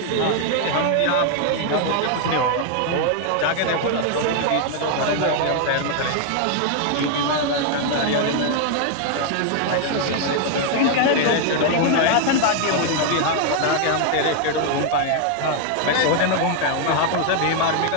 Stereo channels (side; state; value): both; different; correlation 0.00